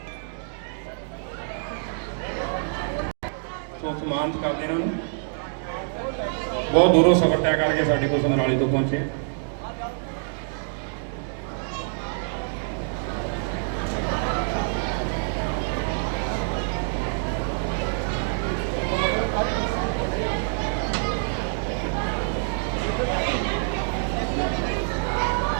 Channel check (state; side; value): silent; left; digital silence